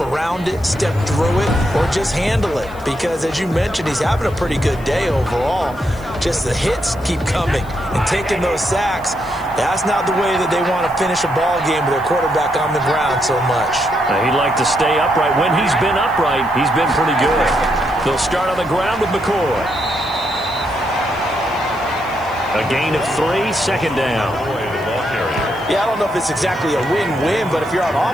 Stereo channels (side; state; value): left; noise; hiss, 25 dB below the sound